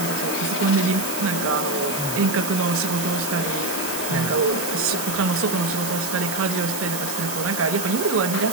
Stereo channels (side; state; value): right; noise; hiss, 5 dB below the sound